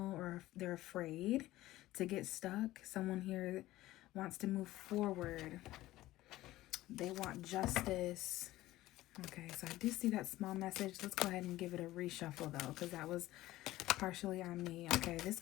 or they're afraid to get stuck. Someone here wants to move forward. They want justice. Okay, so I do see that small message. Let's go ahead and give it a reshuffle though, because that was partially on me. Okay,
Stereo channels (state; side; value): quieter; right; 16.4 dB